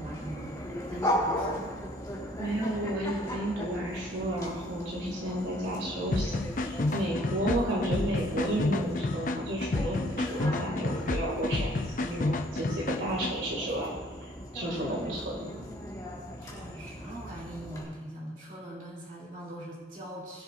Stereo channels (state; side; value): normal; both; correlation 0.59